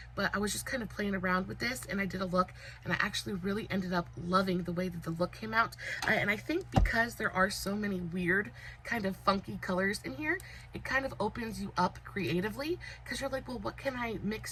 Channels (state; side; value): identical; both; correlation 1.00